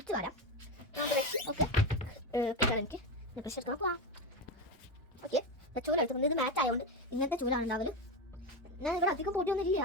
വരാം. ഓക്കെ, എനിക്ക് പ്രഷർ എടുക്കണം. പോവാം. ഓക്കെ, ചൂല എടുത്തുകൊണ്ട് ഇത് മാച്ച് ആയതുകൊണ്ട് ഇങ്ങനത്തെ ചൂലാണ് ഉണ്ടാവല്. ഞാൻ ഇവിടെ അധികം പൊടിയൊന്നും ഇല്ല.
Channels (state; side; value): normal; both; correlation 0.16